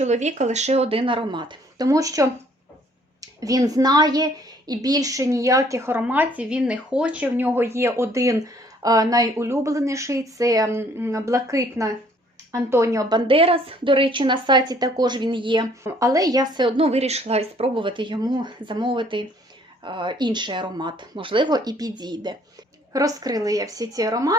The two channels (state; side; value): normal; both; correlation 0.61